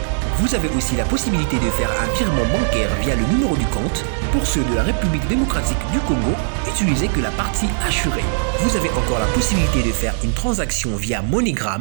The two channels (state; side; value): silent; left; digital silence